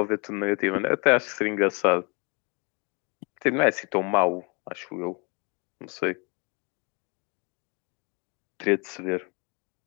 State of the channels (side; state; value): right; quieter; 32.4 dB